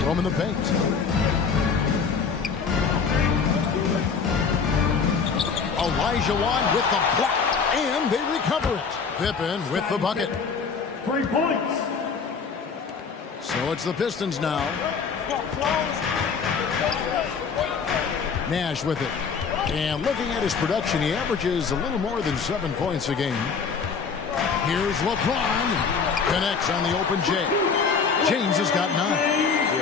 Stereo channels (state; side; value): quieter; right; 5.7 dB